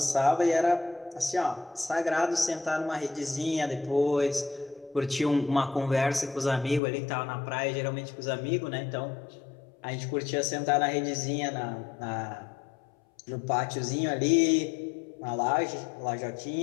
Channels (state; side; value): drops out; right; at 6.8 s